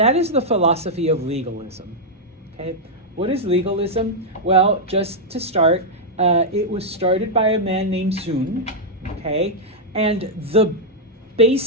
is the philosophy of legalism. Okay, what is legalism? Well, just to start, it was started by a man named Sun. Okay, and the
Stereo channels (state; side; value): normal; both; correlation -0.05